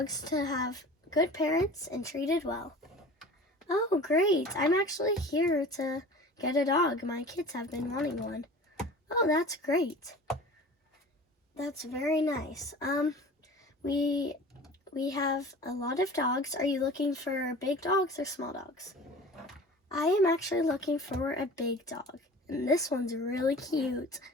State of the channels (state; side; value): normal; both; correlation 0.40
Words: to have good parents and treated well. Oh, great. I'm actually here to get a dog. My kids have been wanting one. Oh, that's great. That's very nice. We have a lot of dogs. Are you looking for big dogs or small dogs? I am actually looking for a big dog. And this one's really cute.